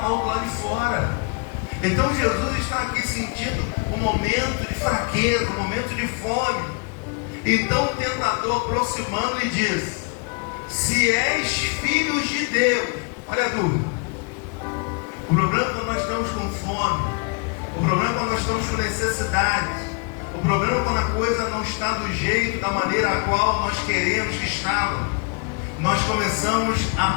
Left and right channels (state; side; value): quieter; right; 33.8 dB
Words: do lado de fora. Então Jesus está aqui sentindo um momento de fraqueza, um momento de fome. Então o tentador aproximando e diz: se és filhos de Deus. Olha a dúvida. O problema é quando nós estamos com fome. O problema é quando nós estamos com necessidade. O problema é quando a coisa não está do jeito, da maneira a qual nós queremos que estava. Nós começamos